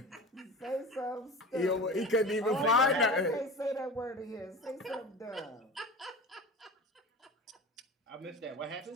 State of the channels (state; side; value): normal; both; correlation 0.33